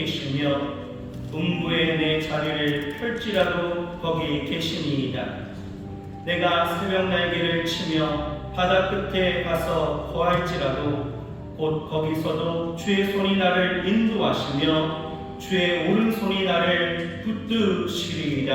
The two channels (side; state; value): both; identical; correlation 1.00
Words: 음부에 내 자리를 펼지라도 거기 계시니이다. 내가 새벽 날개를 치며 바다 끝에 가서 거할지라도 곧 거기서도 주의 손이 나를 인도하시며 주의 오른손이 나를